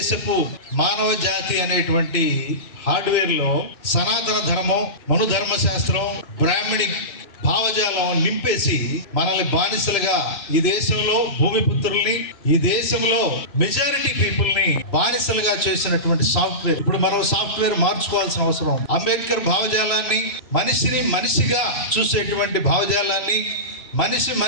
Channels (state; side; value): late; right; 3.0 ms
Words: మానవ జాతి అనేటువంటి హార్డ్వేర్ లో సనాతన ధర్మం, మనుధర్మ శాస్త్రం, బ్రాహ్మణిక్ భావజాలం నింపేసి మనల్ని బానిసలుగా, ఈ దేశంలో భూమిపుత్రుల్ని, ఈ దేశంలో మెజారిటీ పీపుల్ ని బానిసలుగా చేసినటువంటి సాఫ్ట్వేర్. ఇప్పుడు మనం సాఫ్ట్వేర్ మార్చుకోవాల్సిన అవసరం. అంబేద్కర్ భావజాలాన్ని, మనిషిని మనిషిగా చూసేటువంటి భావజాలాన్ని,